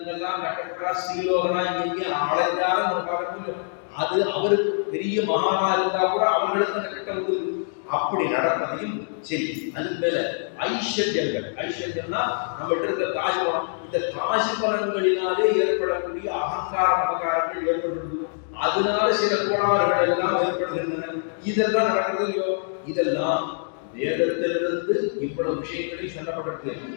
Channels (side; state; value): right; silent; digital silence